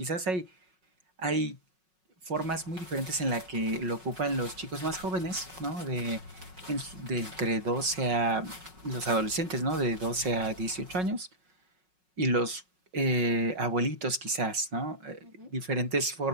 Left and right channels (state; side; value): late; left; 5.4 ms